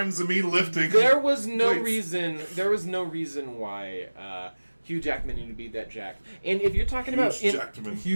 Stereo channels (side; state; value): both; inverted; correlation -1.00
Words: of me lifting. There was no weights. reason why Hugh Jackman needed to be that jacked. And if you're talking